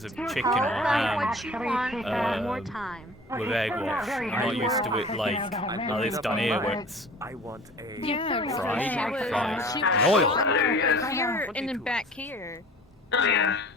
of chicken or What you ham want one more time. with egg wash. I'm not used to it like how it's done here, where it's I want a. Yeah, fried, she in oil. was here and then back here. Oh yeah.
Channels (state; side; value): normal; both; correlation 0.44